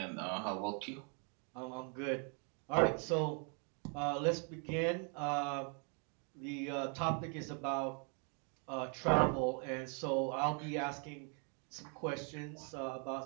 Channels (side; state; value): left; quieter; 39.3 dB